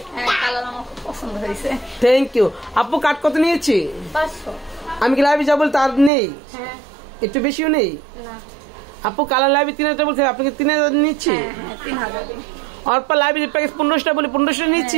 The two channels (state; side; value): drops out; left; at 6.1 s